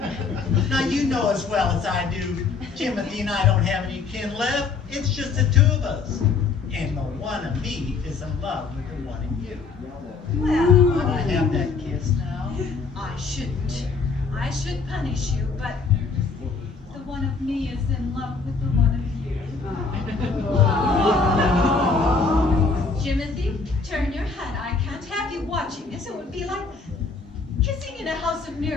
Now you know as well as I do, Timothy and I don't have any kin left. It's just the two of us. And the one of me is in love with the one of you. Well, Can I have that kiss now? I shouldn't. I should punish you, but the one of me is in love with the one of you. Timothy, turn your head. I can't have you watching this. It would be like kissing in a house of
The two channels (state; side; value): quieter; right; 4.6 dB